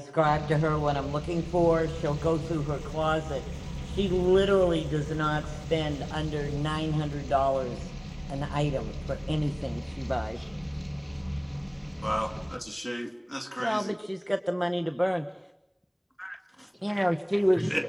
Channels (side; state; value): both; identical; correlation 1.00